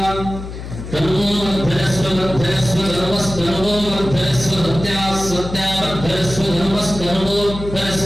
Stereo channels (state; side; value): noise; left; hum, 10 dB below the sound